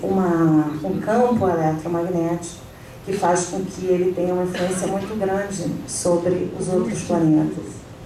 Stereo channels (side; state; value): both; identical; correlation 1.00